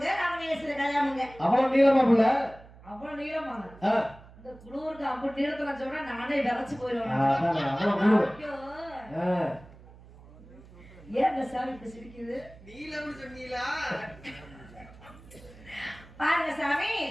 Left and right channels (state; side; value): noise; right; hum, 21 dB below the sound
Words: ராமநேஸ்வர கல்யாணமுங்க. அவ்வளவு நீளமா புள்ள அவ்வளவு நீளமாங்க. இந்த குளூருக்கு அப்படி நீளத்துல சொன்னா நானே விரைச்சு போயிடுவேன். ஏன் இந்த சாமி இப்படி சிரிக்குது? நீலம்னு சொன்னீங்களா? பாருங்க சாமி